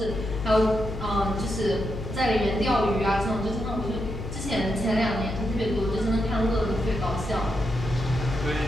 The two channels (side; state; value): left; noise; hum, 7 dB below the sound